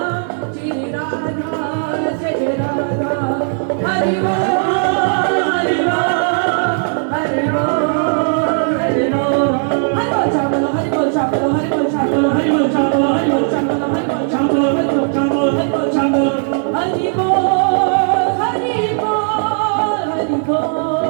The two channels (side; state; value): left; silent; 69 dB below the other